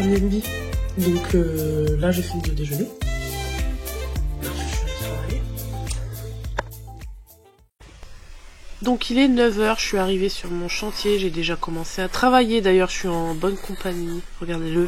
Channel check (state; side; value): identical; both; correlation 1.00